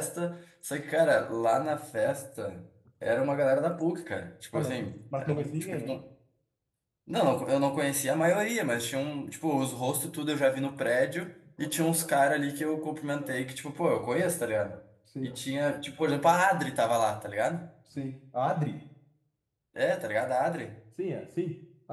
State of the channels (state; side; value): identical; both; correlation 1.00